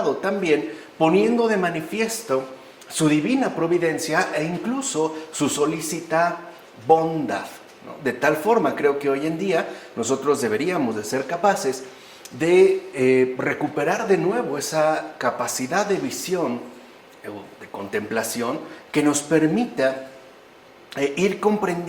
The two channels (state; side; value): identical; both; correlation 1.00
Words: también poniendo de manifiesto su divina providencia e incluso su solícita bondad, ¿no? De tal forma, creo que hoy en día nosotros deberíamos de ser capaces de recuperar de nuevo esa capacidad de visión, de contemplación, que nos permita ir